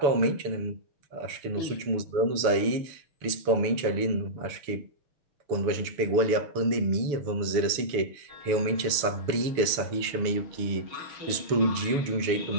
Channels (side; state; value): left; late; 7.0 ms